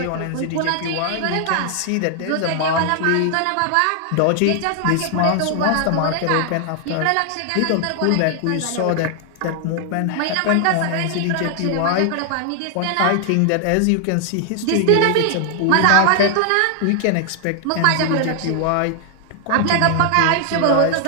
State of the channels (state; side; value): different; both; correlation 0.00